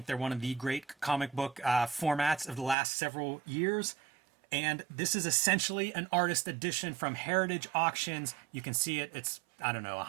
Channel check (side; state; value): left; drops out; at 2.8 s